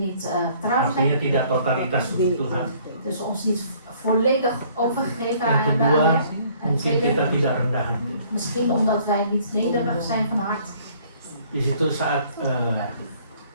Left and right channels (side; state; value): both; inverted; correlation -0.59